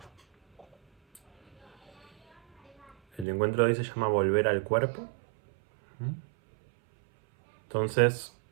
El encuentro de hoy se llama Volver al cuerpo. Entonces,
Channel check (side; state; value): left; drops out; at 3.2 s